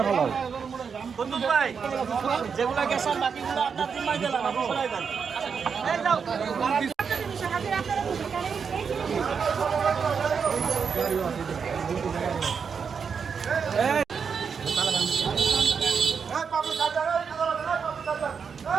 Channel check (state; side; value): quieter; left; 6.2 dB